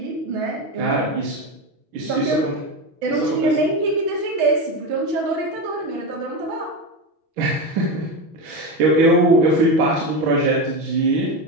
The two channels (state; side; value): late; left; 6.2 ms